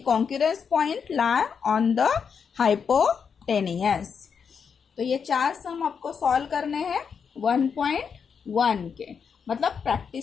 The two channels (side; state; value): right; quieter; 6.5 dB